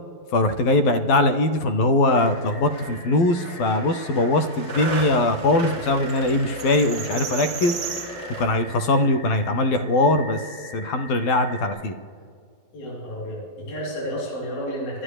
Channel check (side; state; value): right; late; 12 ms